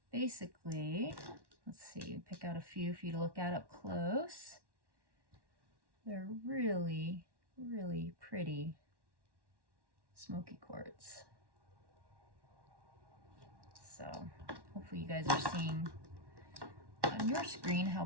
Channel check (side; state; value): left; late; 1.1 ms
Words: basically, let's see, pick out a few for you to look at up close. They're really, really pretty Smoky Quartz. So hopefully you guys are seeing on your screen how